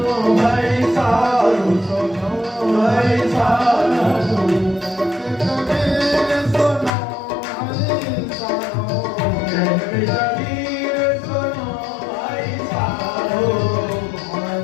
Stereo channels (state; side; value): drops out; right; at 6.9 s